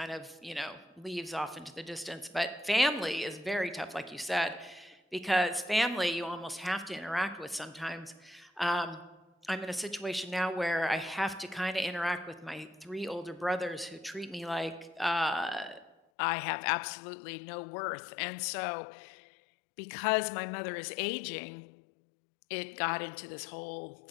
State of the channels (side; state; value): right; drops out; at 16.0 s